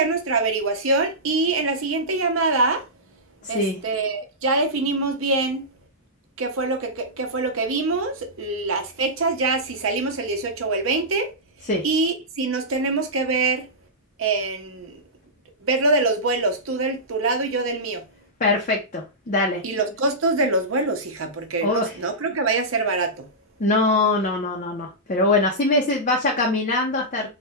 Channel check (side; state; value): both; normal; correlation -0.14